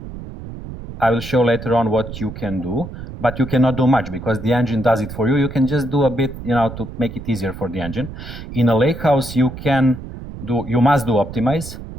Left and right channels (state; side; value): noise; right; rumble, 11 dB below the sound